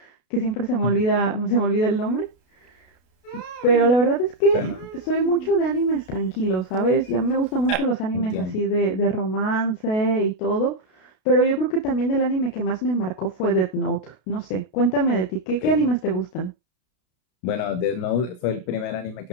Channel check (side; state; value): right; late; 33 ms